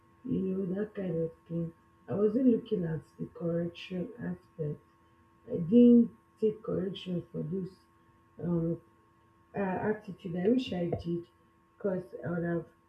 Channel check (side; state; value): both; identical; correlation 1.00